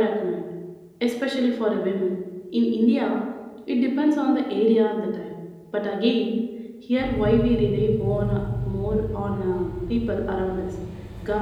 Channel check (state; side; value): identical; both; correlation 1.00